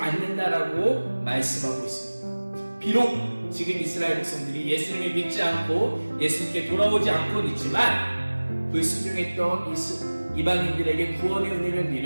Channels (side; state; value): both; inverted; correlation -1.00